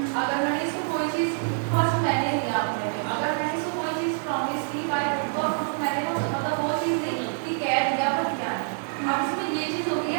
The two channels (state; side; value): silent; left; digital silence